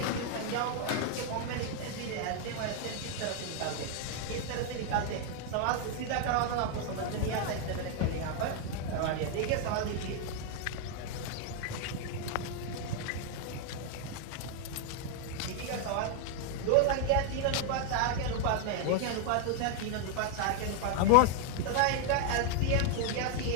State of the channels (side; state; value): both; different; correlation 0.00